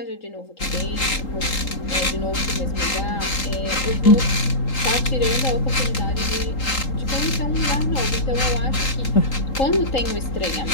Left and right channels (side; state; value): right; late; 3.8 ms